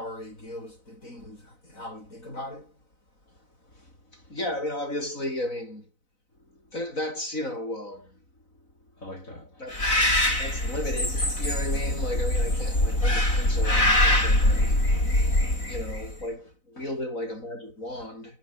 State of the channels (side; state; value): right; late; 4.0 ms